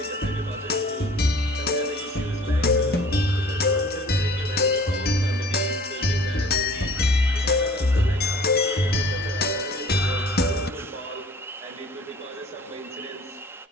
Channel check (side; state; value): both; normal; correlation 0.49